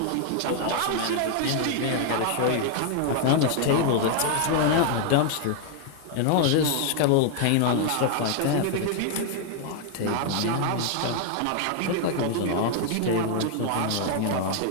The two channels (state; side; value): different; both; correlation 0.00